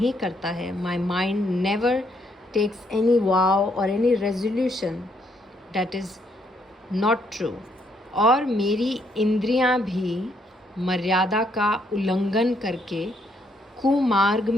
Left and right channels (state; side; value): normal; both; correlation 0.72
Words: करता है. My mind never takes any vow और any resolution that is not true. और मेरी इंद्रियां भी मर्यादा का उल्लंघन करके कुमार्ग